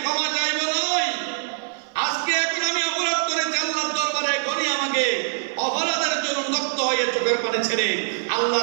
ক্ষমা চাইব নয়, আজকে এখন আমি অপরাধ করেছি আল্লাহর দরবারে, এখনই আমাকে অপরাধের জন্য উন্মুক্ত হয়ে চোখের পানি ছেড়ে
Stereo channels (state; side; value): silent; left; 55 dB below the other